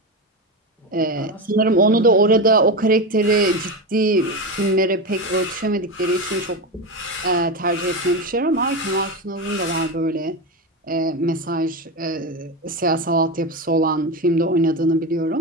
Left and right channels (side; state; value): both; normal; correlation 0.17